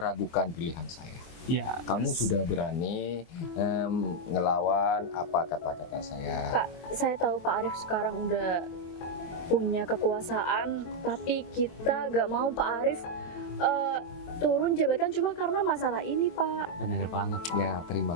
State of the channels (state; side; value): late; right; 23 ms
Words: pilihan saya. Ya, Kamu sudah berani ngelawan apa kata-kata saya. Pak, saya tahu Pak Arif sekarang udah punya kekuasaan, tapi kita gak mau Pak Arif turun jabatan cuma karena masalah ini, Pak. benar banget. Ya, terima